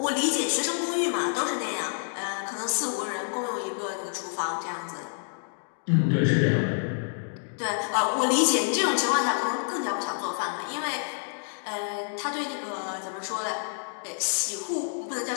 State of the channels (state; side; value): silent; right; digital silence